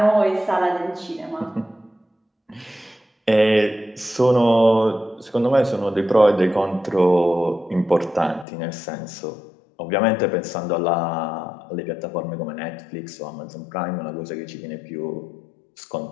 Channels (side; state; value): right; drops out; at 8.5 s